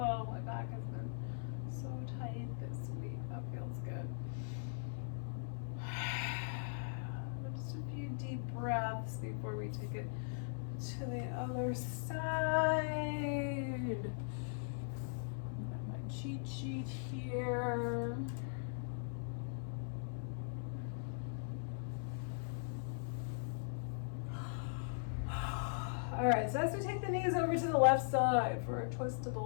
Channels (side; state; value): right; silent; 51 dB below the other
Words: my back has been so tight this week. That feels good. Just a few deep breaths before we take it to the other side. Got my cheat sheet here. All right, so as we take the knees over to the left side for a twist to the